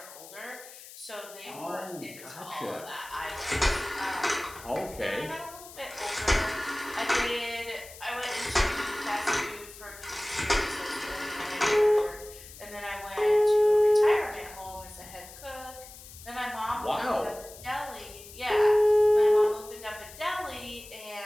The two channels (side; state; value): left; noise; hiss, 17 dB below the sound